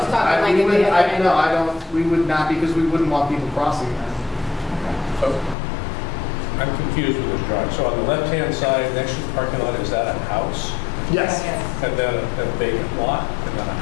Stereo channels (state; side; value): drops out; right; at 5.6 s